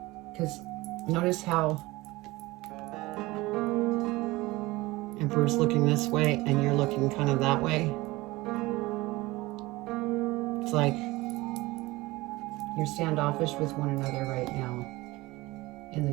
Because notice how Emperor's looking this way and you're looking kind of that way. It's like you're standoffish with one another right now. And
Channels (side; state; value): left; quieter; 20.5 dB